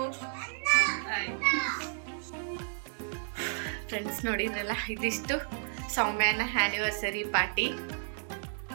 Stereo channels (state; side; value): silent; left; digital silence